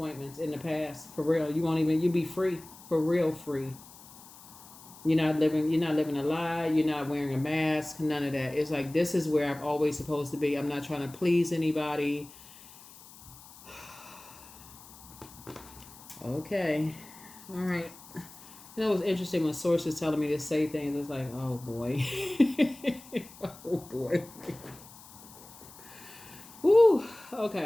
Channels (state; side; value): noise; left; hiss, 20 dB below the sound